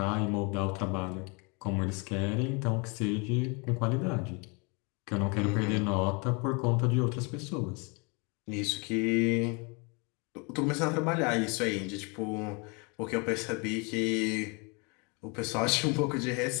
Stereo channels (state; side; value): quieter; right; 31.4 dB